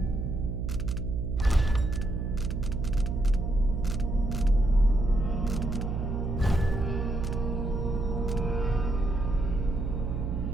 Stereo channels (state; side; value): noise; right; hum, 2 dB below the sound